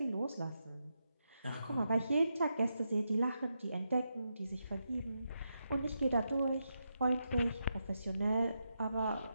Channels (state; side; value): inverted; both; correlation -0.85